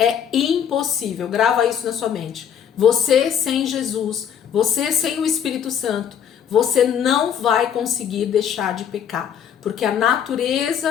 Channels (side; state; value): right; quieter; 8.6 dB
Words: impossível. Grava isso na sua mente. Você sem Jesus, você sem o Espírito Santo, você não vai conseguir deixar de pecar, porque a